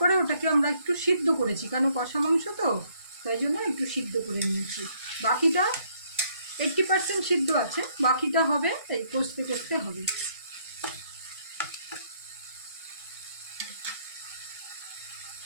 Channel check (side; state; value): both; inverted; correlation -0.68